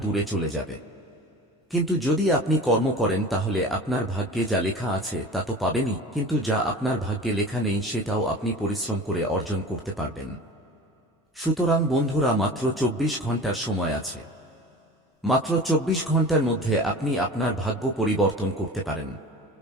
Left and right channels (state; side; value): normal; both; correlation 0.37